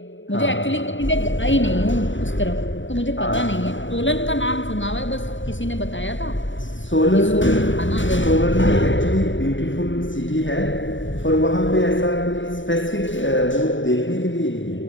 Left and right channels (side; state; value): right; late; 0.55 ms